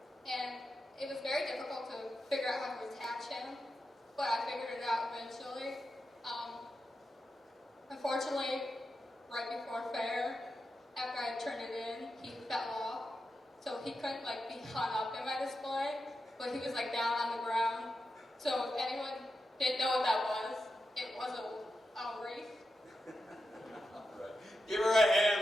and it was very difficult to figure out how to attach him, but I figured it out eventually. Unfortunately, right before fair, after I turned it in, he fell off, so he couldn't like be hung up in my display, but he was like down on the ground. So if anyone didn't know what that was, it was a wreath. All right. Give her a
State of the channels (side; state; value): both; normal; correlation 0.89